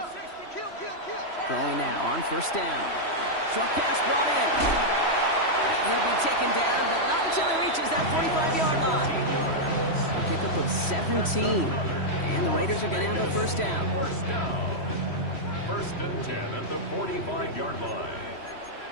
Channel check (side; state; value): right; late; 3.1 ms